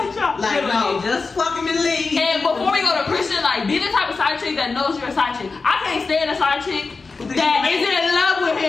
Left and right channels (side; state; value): right; quieter; 4.2 dB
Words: Like, no, just fuck him and leave. And before we go to Christian, like, be the type of side chick that knows you're a side chick. I can't stand a side chick that is in love with